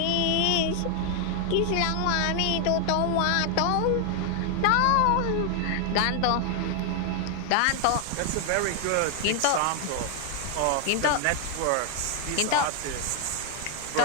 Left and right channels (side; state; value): both; different; correlation 0.00